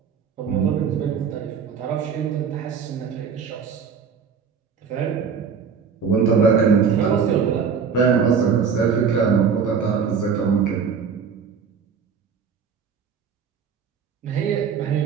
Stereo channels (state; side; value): quieter; left; 6.4 dB